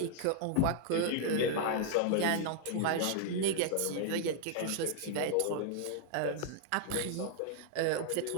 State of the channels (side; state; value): both; different; correlation -0.01